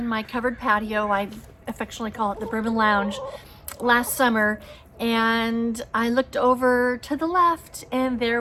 my covered patio, I affectionately call it the Bourbon Lounge, last summer, and I looked over to the left and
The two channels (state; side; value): identical; both; correlation 1.00